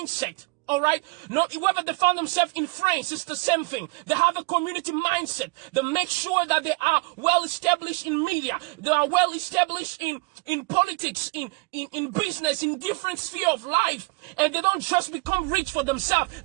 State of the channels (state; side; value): quieter; left; 27.3 dB